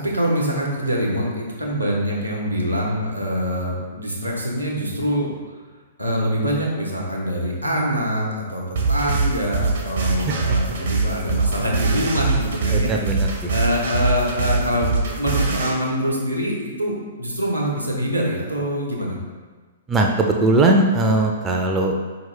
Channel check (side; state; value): both; inverted; correlation -0.42